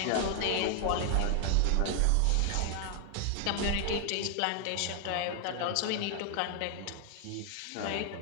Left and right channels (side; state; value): both; different; correlation 0.00